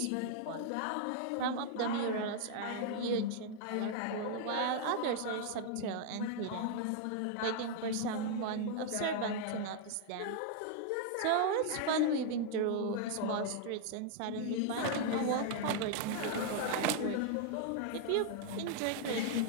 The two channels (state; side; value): different; both; correlation 0.00